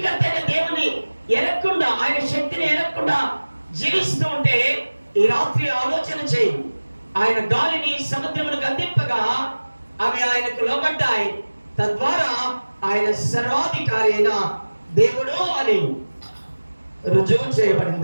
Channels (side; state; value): both; inverted; correlation -1.00